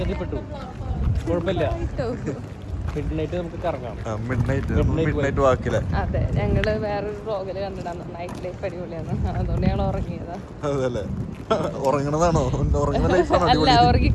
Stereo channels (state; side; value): identical; both; correlation 1.00